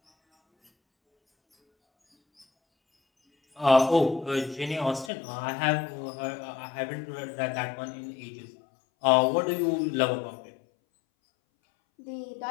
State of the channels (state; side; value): drops out; right; at 5.1 s